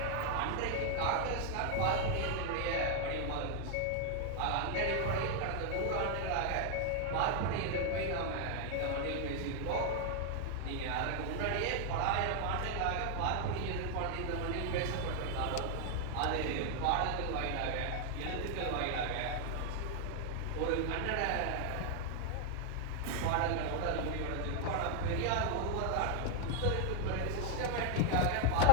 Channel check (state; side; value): different; both; correlation 0.00